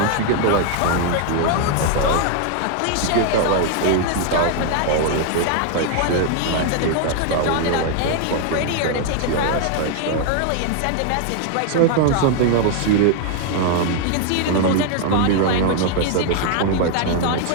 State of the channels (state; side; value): different; both; correlation 0.00